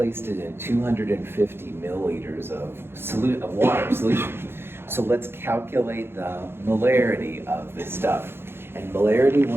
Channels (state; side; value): late; left; 0.11 ms